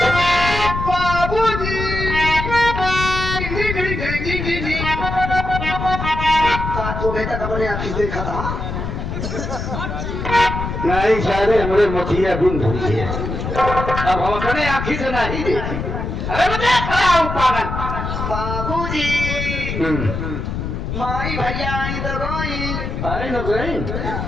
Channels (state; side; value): noise; left; rumble, 4 dB below the sound